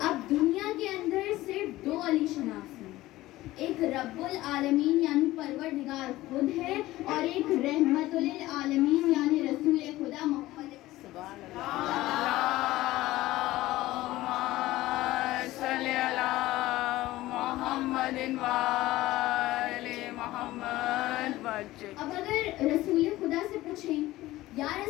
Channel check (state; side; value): quieter; right; 17.0 dB